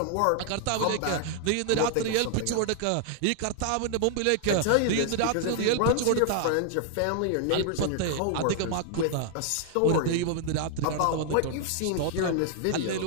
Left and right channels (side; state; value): both; different; correlation 0.00